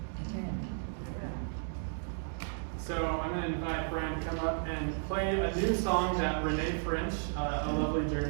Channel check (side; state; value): left; silent; digital silence